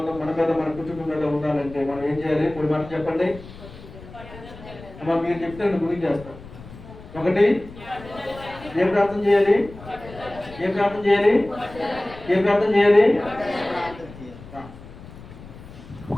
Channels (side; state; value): left; noise; rumble, 17 dB below the sound